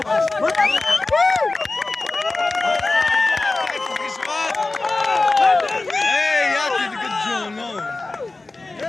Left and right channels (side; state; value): right; quieter; 3.3 dB